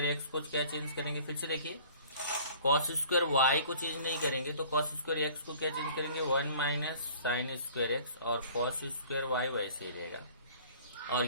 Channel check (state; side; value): inverted; both; correlation -0.50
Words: x को क्या चेंज करेंगे, फिर से देखिए cos स्क्वायर y को चेंज नहीं करेंगे तो cos स्क्वायर x को क्या चेंज करेंगे, 1 माइनस साइन स्क्वायर x, और cos स्क्वायर y वैसे ही रहेगा।